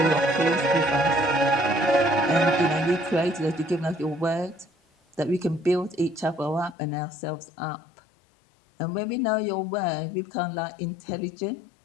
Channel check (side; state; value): right; drops out; at 6.8 s